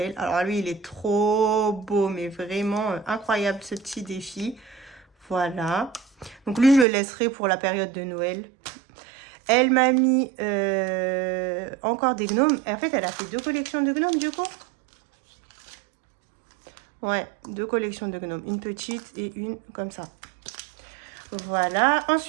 Alors lui, il est trop beau, mais vraiment incroyable ce petit défi. Voilà. Donc lui, je le laisserai pour la période de Noël. Elle m'a mis encore des gnomes. Et en fait, elle a fait 2 collections de gnomes du coup. Ouais, 2 collections de gnomes. Une petite et une comme ça. Voilà.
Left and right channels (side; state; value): left; drops out; at 6.9 s